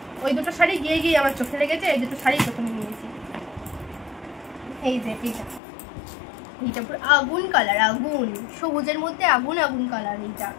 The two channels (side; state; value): right; drops out; at 5.6 s